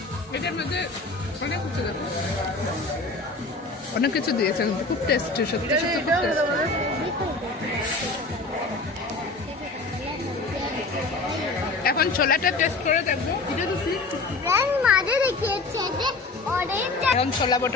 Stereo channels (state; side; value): quieter; right; 3.5 dB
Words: এটার মধ্যে অনেক কিছু দিয়েছে, খুব টেস্টি, সত্যি সত্যি খুব tasty। এখন ছোলাটা টেস্ট করে দেখবো। মাঝে দেখিয়েছে যে অরেঞ্জ এখন ছোলা